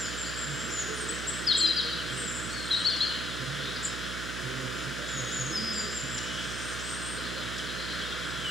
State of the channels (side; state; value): right; noise; hum, 6 dB below the sound